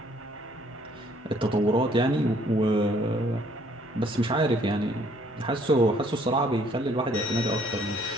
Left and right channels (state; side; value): normal; both; correlation 0.63